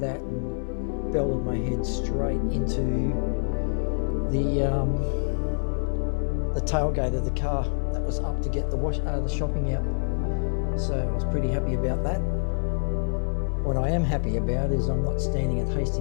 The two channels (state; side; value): silent; right; 61 dB below the other